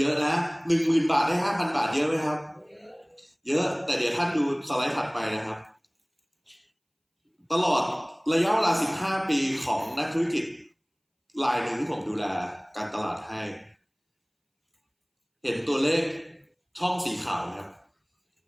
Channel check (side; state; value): both; identical; correlation 1.00